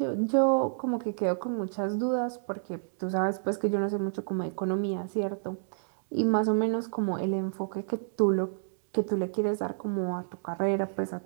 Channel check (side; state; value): left; silent; digital silence